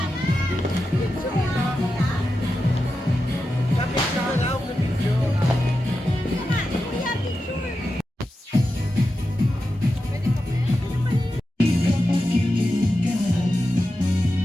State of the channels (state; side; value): normal; both; correlation 0.90